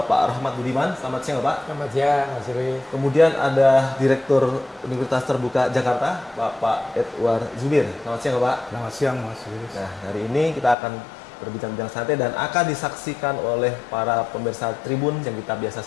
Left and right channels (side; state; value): right; drops out; at 10.8 s